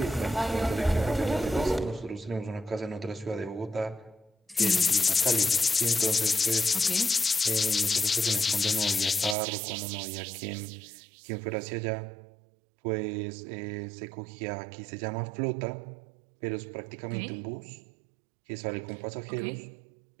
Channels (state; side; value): drops out; left; at 9.3 s